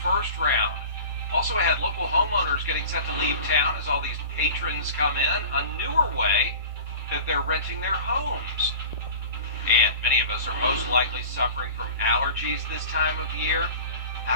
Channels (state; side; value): inverted; both; correlation -0.38